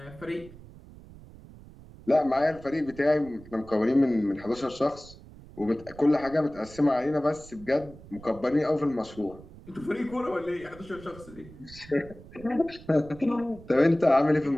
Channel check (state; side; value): noise; right; rumble, 19 dB below the sound